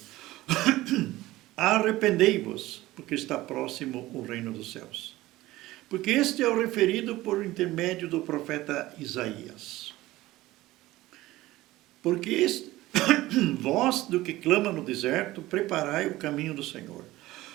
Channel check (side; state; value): left; quieter; 17.4 dB